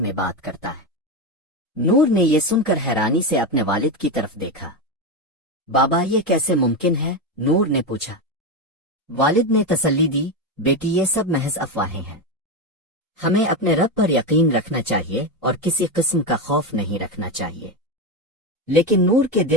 بات کرتا ہے۔ نور نے یہ سن کر حیرانی سے اپنے والد کی طرف دیکھا۔ بابا یہ کیسے ممکن ہے؟ نور نے پوچھا۔ والد نے تسلی دی، بیٹی یہ سب محض افواہیں ہیں۔ ہمیں اپنے رب پر یقین رکھنا چاہیے اور کسی قسم کا خوف نہیں رکھنا چاہیے۔ لیکن نور کے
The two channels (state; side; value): normal; both; correlation 0.13